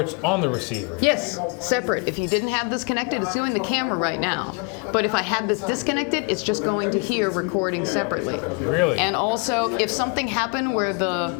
on the receiver. Yes, separate. If you didn't have this connected, it's doing the camera right now. But if I had this disconnected, it's just going to here recording separately. Really? And also, if something happened where the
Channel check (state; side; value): quieter; right; 34.2 dB